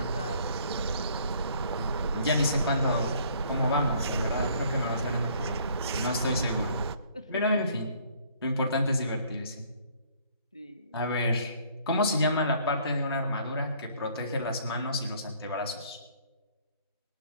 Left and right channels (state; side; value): inverted; both; correlation -0.60